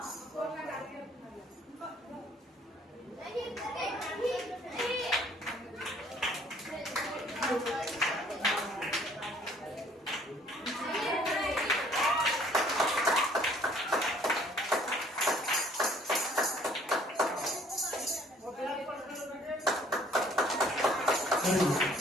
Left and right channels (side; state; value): both; normal; correlation 0.59